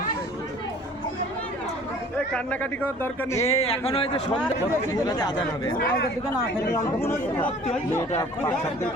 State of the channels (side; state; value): both; normal; correlation 0.50